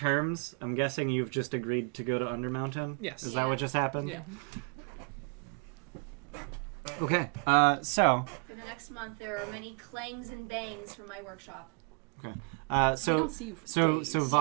I'm guessing you've just agreed to go to Undermountain. Yes. Is that what just happened? Yeah. Okay. So for the next month, there are many clangs and bangs from my workshop. We so don't see you for days. so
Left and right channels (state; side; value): quieter; left; 37.5 dB